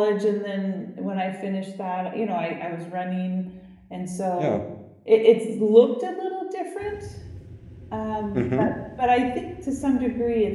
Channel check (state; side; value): identical; both; correlation 1.00